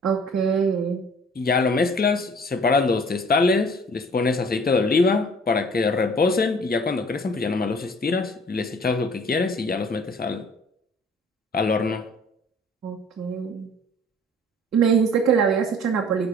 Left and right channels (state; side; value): normal; both; correlation 0.51